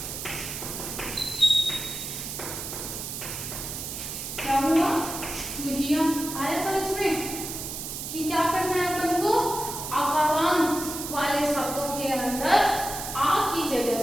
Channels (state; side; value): noise; right; hiss, 6 dB below the sound